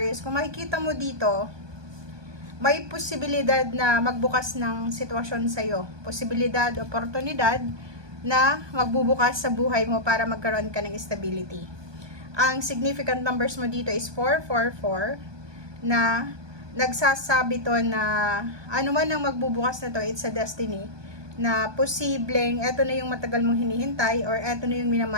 Kung makikita mo dito, may posibilidad na magbukas ng sitwasyon sa'yo. Posibilidad, oportunidad na magbubukas sa buhay mo para magkaroon ka ng stability. Ang significant numbers mo dito is 444 na nagsasabi to na ano man ang magbubukas na to, it's a destiny. Na posibleng eto na yung matagal mong hinihintay or eto na yung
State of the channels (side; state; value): left; late; 1.2 ms